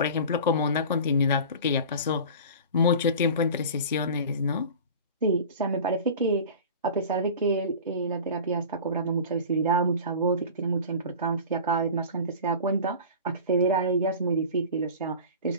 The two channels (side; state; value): both; inverted; correlation -0.36